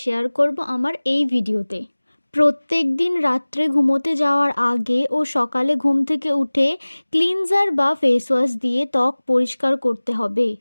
করব আমার এই ভিডিওতে। প্রত্যেকদিন রাত্রে ঘুমোতে যাওয়ার আগে ও সকালে ঘুম থেকে উঠে ক্লিনজার বা ফেস ওয়াশ দিয়ে ত্বক পরিষ্কার করতে হবে।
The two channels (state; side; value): inverted; both; correlation -1.00